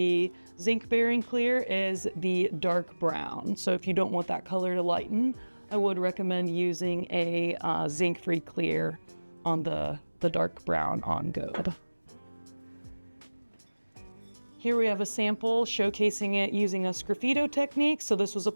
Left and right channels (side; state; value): both; inverted; correlation -1.00